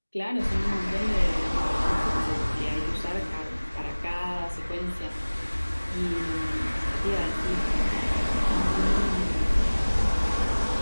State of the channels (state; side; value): inverted; both; correlation -1.00